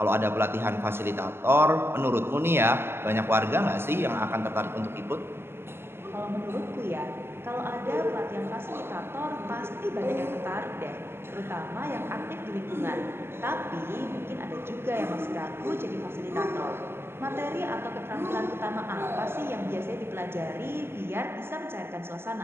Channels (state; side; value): late; left; 0.12 ms